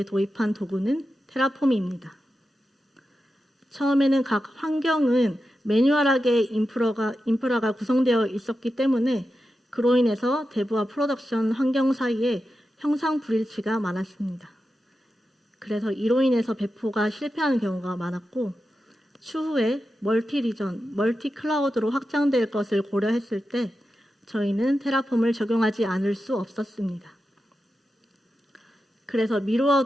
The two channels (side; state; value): both; normal; correlation 0.90